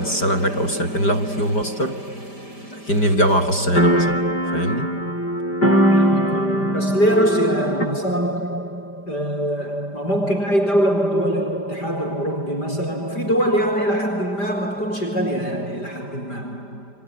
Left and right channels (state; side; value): late; right; 5.0 ms